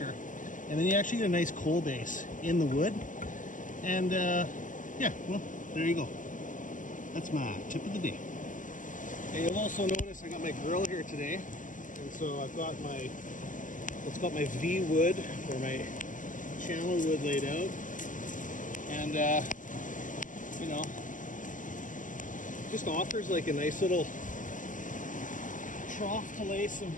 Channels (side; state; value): right; late; 0.38 ms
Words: And then you actually get a nice coal base in the wood. And yeah, well, there you go. That's my tip of the day. And you'll also notice I got my grill here today. And so I've got my, it's got my V wood, or my channel wood laid out. And, you know, just offers like a nice little trough to lay some